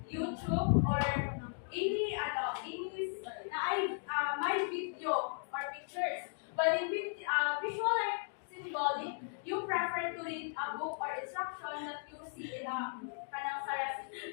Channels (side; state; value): right; silent; digital silence